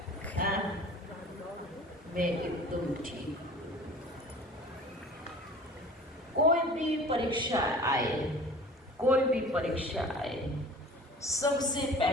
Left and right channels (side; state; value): both; normal; correlation 0.43